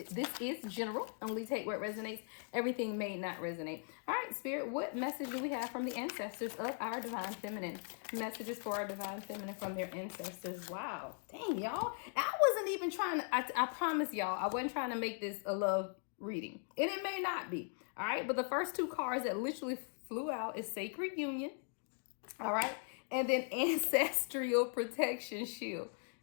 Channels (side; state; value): right; silent; 52 dB below the other